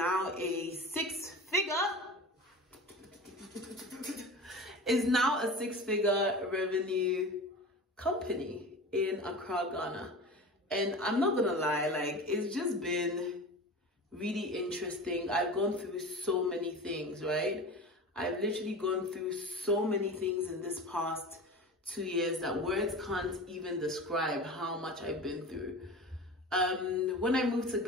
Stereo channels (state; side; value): normal; both; correlation 0.33